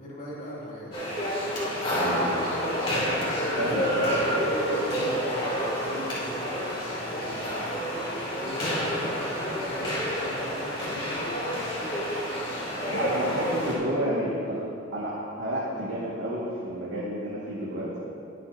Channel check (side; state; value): both; normal; correlation 0.16